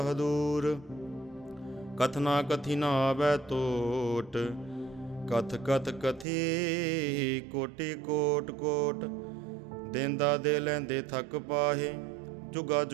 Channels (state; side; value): drops out; left; at 6.2 s